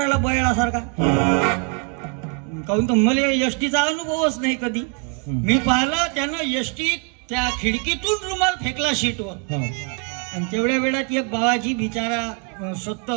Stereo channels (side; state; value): left; quieter; 35.8 dB